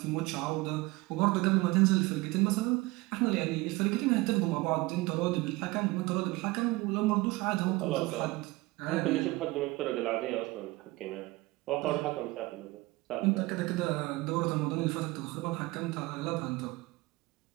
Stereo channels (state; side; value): quieter; left; 21.6 dB